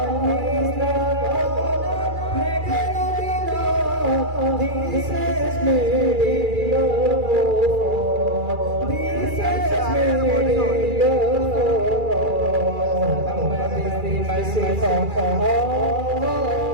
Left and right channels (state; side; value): late; left; 2.4 ms